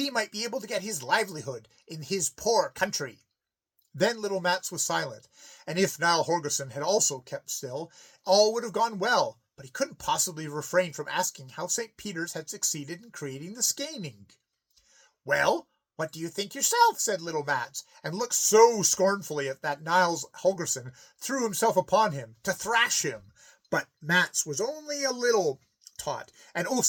might be able to get his livelihood in his poor country. Then little Mats was silent, and if Niall Holgersen had also kept still, all would have gone well, but he couldn't possibly refrain from asking how St. Peter's had succeeded in creating the Skaning. "Well, what do you think yourself?" said little Mats, and looked so scornfully at that Niles Holgersen threw himself upon him to thrash him. But Mats was only a little taught, and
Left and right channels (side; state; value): both; identical; correlation 1.00